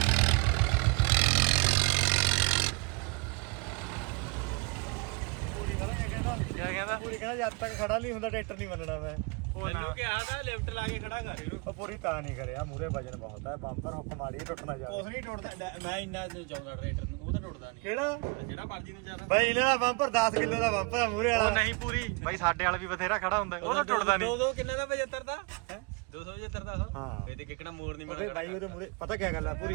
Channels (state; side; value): quieter; left; 31.0 dB